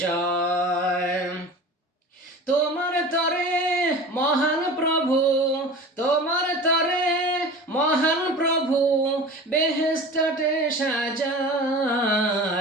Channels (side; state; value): both; normal; correlation 0.36